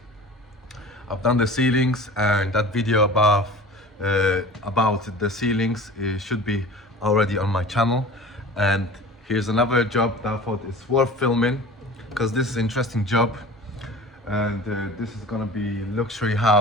I've done the ceilings, and that video about the ceilings should be already on my channel. And here's another job that I thought is worth filming because this is an interesting job. And this is gonna be luxury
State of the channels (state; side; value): normal; both; correlation 0.39